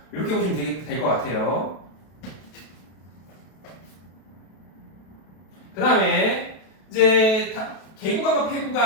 이렇게 보시면 될 것 같아요. 그 다음에 이제 개구간과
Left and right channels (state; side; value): late; right; 32 ms